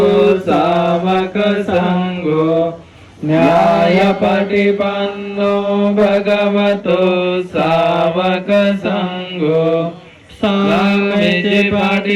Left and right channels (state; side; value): identical; both; correlation 1.00